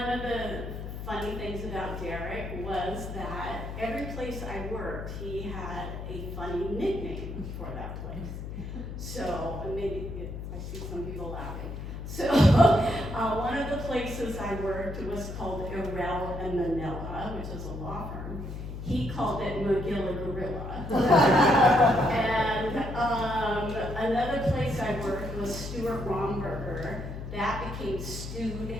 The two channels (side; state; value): left; noise; hum, 8 dB below the sound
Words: of the funny things about Darrick was that every place I worked, he had a funny nickname for that place. So, maybe, I see some people laughing. So, one of the places I worked was called Irel and Manila, which is a law firm. He called it Magilla Gorilla. And another place I worked was Stuart Romberger. That became Stewed